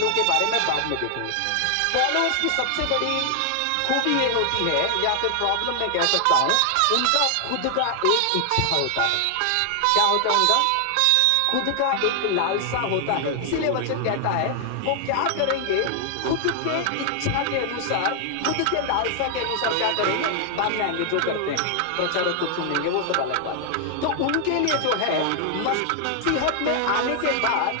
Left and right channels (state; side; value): different; both; correlation 0.00